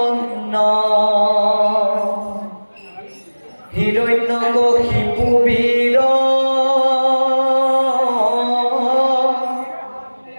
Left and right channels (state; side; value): inverted; both; correlation -1.00